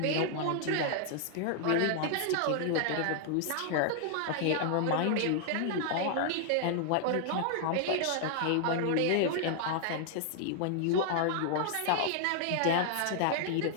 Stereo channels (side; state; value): both; different; correlation 0.00